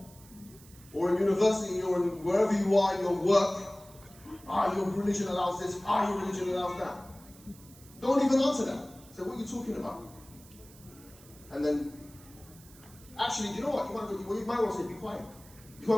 or in university, or in wherever you are in your work. Your religion allows this, your religion allows that. Don't even answer that. Say, what are you talking about? And then, actually, you know what? You might want to say, be quiet. You might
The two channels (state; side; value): noise; right; hiss, 23 dB below the sound